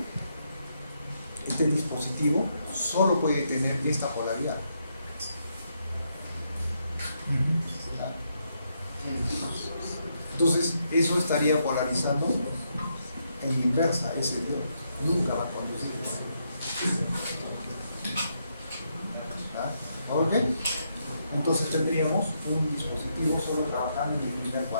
solo puede tener esta polaridad. Entonces, eso estaría polarizando en inversa ese diodo. Nunca va a conducir. ¿Ok? Entonces tendríamos un dispositivo solo trabajando en el primer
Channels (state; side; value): inverted; both; correlation -0.79